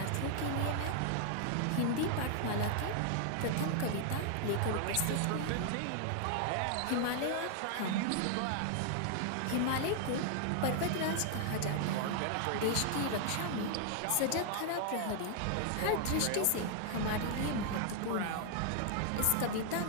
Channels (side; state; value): both; different; correlation 0.00